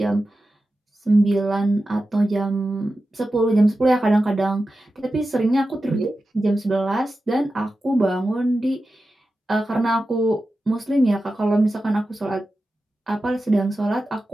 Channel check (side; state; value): both; normal; correlation 0.92